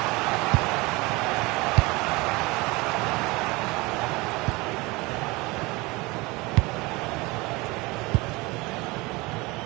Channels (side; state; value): left; quieter; 23.7 dB